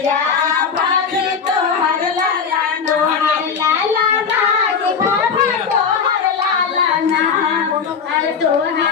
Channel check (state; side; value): quieter; right; 6.1 dB